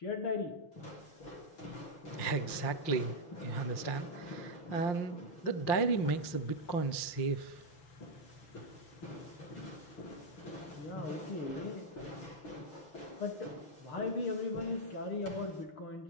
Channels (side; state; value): right; late; 5.7 ms